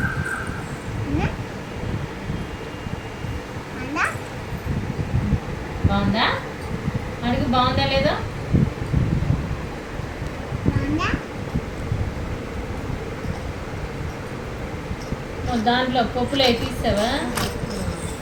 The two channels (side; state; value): both; identical; correlation 1.00